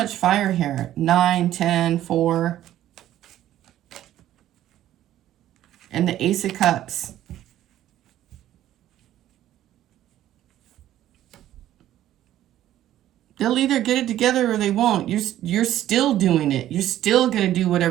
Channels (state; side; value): quieter; left; 12.8 dB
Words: fire here. 9, 10, 4. And the Ace of Cups. They'll either get it together or they won't. You're still doing it. You're still going to do